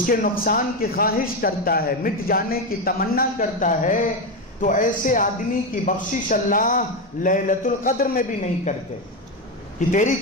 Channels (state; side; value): normal; both; correlation 0.12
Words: کے نقصان کی خواہش کرتا ہے، مٹ جانے کی تمنا کرتا ہے، تو ایسے آدمی کی بخشش اللہ لیلۃ القدر میں بھی نہیں کرتے کہ تیری